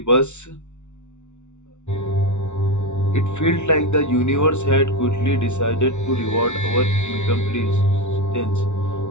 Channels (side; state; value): right; late; 0.83 ms